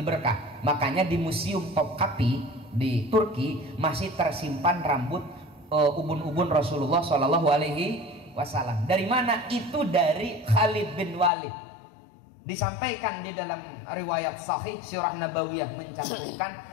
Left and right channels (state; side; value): drops out; right; at 11.3 s